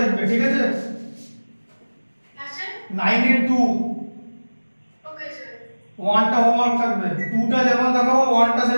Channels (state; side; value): inverted; both; correlation -1.00